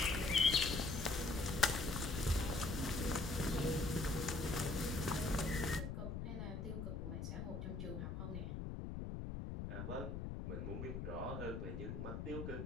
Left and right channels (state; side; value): noise; left; rumble, 4 dB below the sound